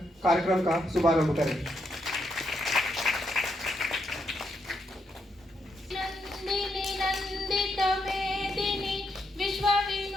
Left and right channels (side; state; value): both; normal; correlation 0.79